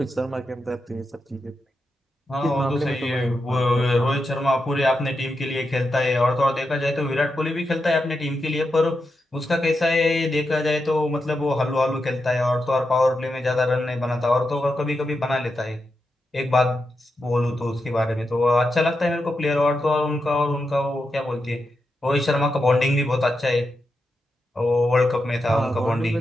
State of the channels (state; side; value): normal; both; correlation 0.87